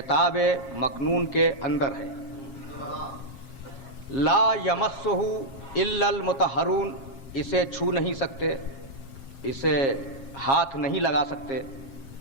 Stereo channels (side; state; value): right; late; 7.4 ms